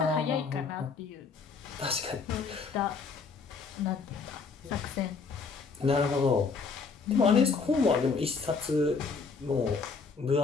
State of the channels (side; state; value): right; quieter; 4.9 dB